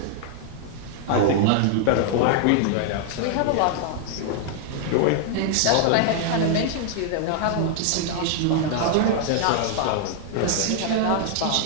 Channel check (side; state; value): both; different; correlation 0.00